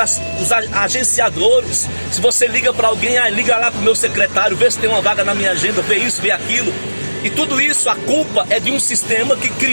agenciadores. Se você liga para alguém, liga lá para o meu secretário, vê se tem uma vaga na minha agenda, vê isso, vê aquilo. E tudo isso, a culpa é de um sistema que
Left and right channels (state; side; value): inverted; both; correlation -1.00